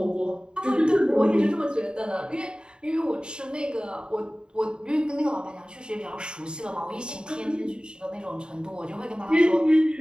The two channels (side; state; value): left; late; 0.049 ms